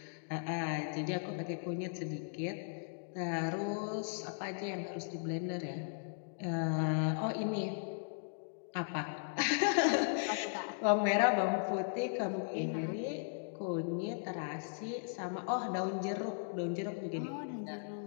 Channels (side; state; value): right; silent; digital silence